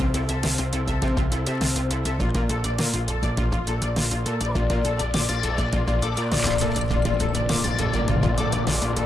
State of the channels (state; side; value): normal; both; correlation 0.87